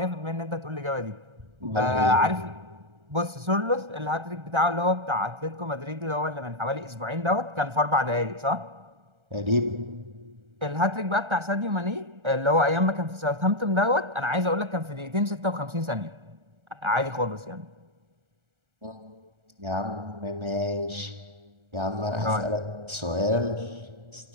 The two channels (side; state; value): left; late; 1.3 ms